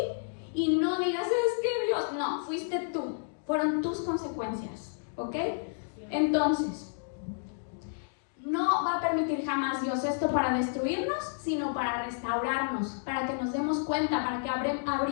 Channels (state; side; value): silent; right; digital silence